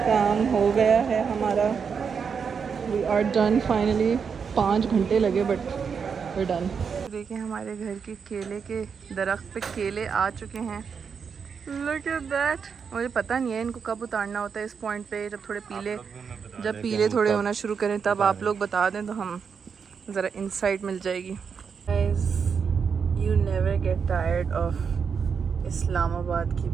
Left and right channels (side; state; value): left; quieter; 6.3 dB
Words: काम हो गया है हमारा। We are done finally. 5 घंटे लगे बट वी डन। देखिए हमारे घर के केले के दरख्त पे केले आ चुके हैं। Look at that. मुझे पता नहीं है इनको कब उतारना होता है इस पॉइंट पे, जब थोड़े पीले, जब पीले थोड़े होना शुरू करें तब आप लोग बता दें तो हम ज़रा इंसाइट मिल जाएगी। Guys, you never get tired of Islamabad की